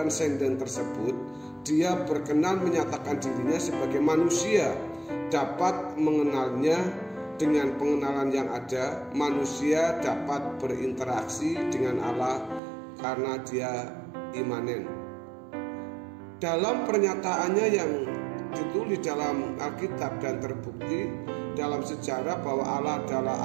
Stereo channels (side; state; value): left; drops out; at 12.6 s